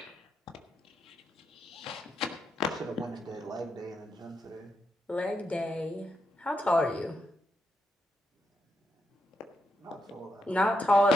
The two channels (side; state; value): both; normal; correlation 0.83